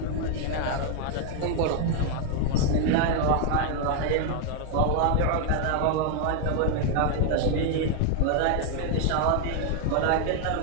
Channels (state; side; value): different; both; correlation 0.00